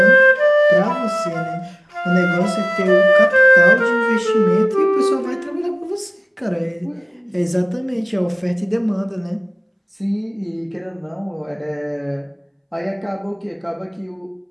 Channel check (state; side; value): identical; both; correlation 1.00